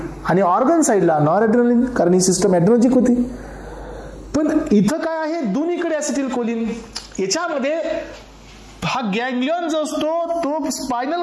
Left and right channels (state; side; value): identical; both; correlation 1.00